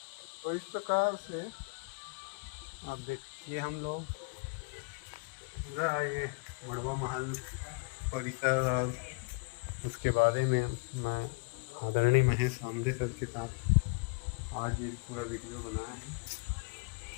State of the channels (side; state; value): right; quieter; 31.0 dB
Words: तो इस प्रकार से अब देखिए हम लोग पूरा ये मड़वा महल परिसर और उसके बारे में मैं आदरणीय महेश आमदे सर के साथ आज ये पूरा वीडियो बनाया